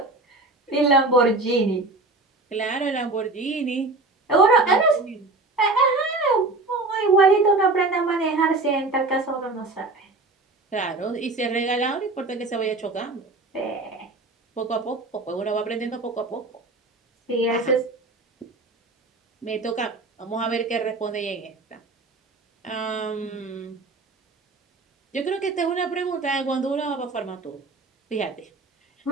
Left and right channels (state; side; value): quieter; left; 3.3 dB